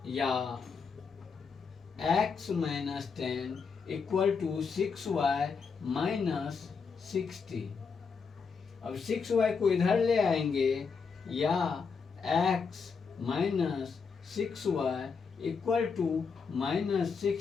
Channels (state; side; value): quieter; right; 5.5 dB